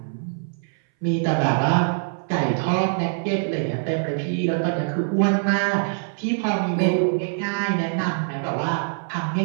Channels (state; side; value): silent; left; 60 dB below the other